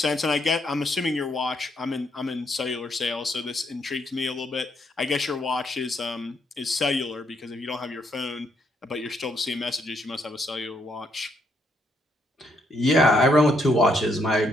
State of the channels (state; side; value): normal; both; correlation 0.73